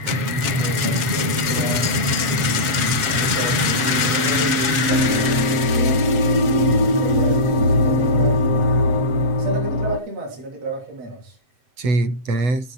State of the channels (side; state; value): left; late; 7.9 ms